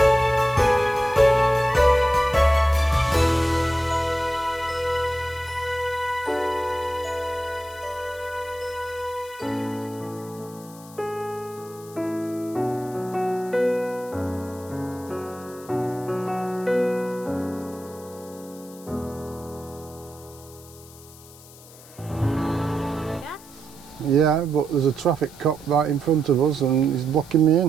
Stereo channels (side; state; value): left; noise; hiss, 21 dB below the sound